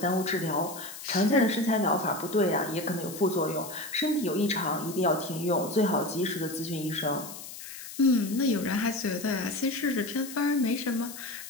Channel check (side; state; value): left; noise; hiss, 12 dB below the sound